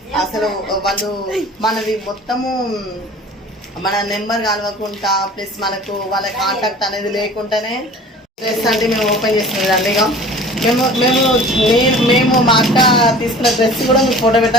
అసలు వాళ్ళు మనది మొత్తము మన నెంబర్ కలవకుండా ప్లస్ మనకు వాళ్ళ కాంటాక్ట్ అనేది లేకుండానే డ్రెస్ అంటే మేము ఓపెన్ చేసినదండి. ఇక మేము మా అక్క తీసుకున్న డ్రెస్ కూడా మీకు ఫోటో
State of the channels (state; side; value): normal; both; correlation 0.44